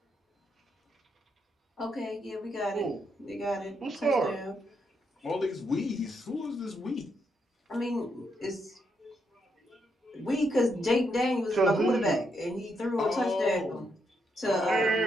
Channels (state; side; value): normal; both; correlation 0.79